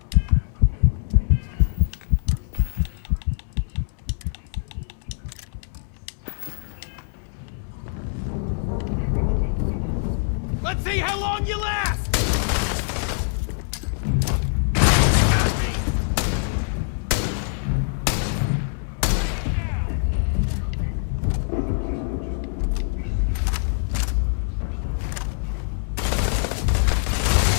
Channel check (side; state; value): right; silent; 63 dB below the other